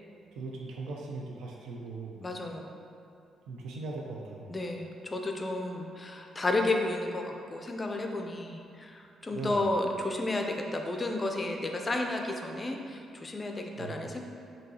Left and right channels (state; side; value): normal; both; correlation 0.83